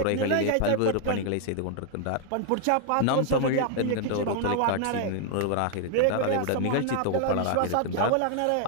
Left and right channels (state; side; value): different; both; correlation 0.00